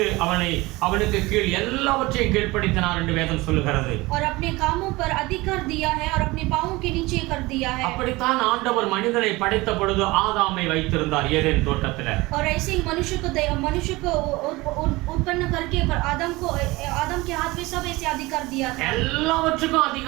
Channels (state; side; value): quieter; left; 21.5 dB